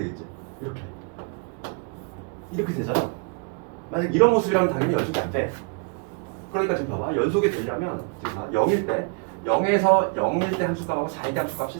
이렇게 되잖아. 만약 이런 모습이라면 당연히 연속이 안 돼. 그러니까 지금 봐봐. 연속이 되려면 지금 봐. 0일 때 0일 때 함수값하고 4일 때 함수값이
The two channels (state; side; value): quieter; left; 34.5 dB